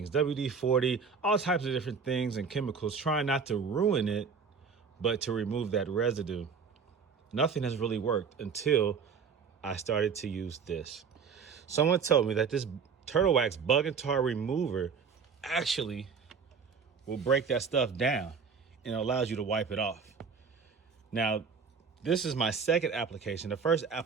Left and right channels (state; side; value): quieter; left; 5.8 dB